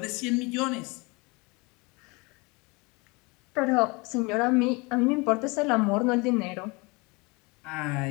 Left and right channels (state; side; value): quieter; right; 27.1 dB